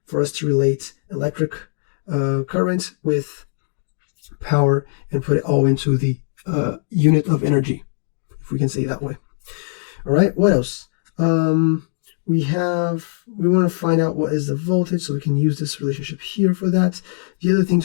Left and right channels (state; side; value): silent; right; digital silence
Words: for us to relate electric current with power and put it all into the unit of energy, if we can say it that way. All right, what else? We want to find out what is the voltage, so we can use this relationship here for that. The other thing